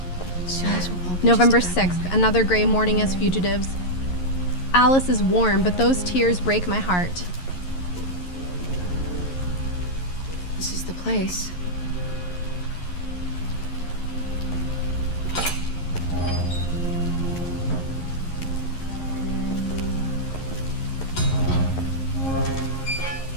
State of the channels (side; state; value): right; late; 11 ms